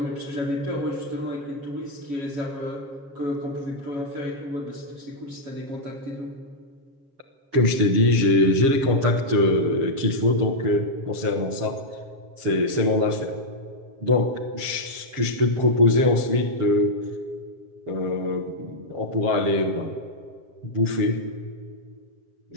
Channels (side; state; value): left; late; 7.4 ms